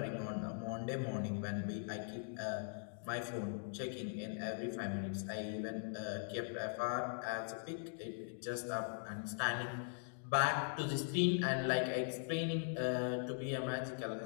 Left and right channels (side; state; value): right; silent; digital silence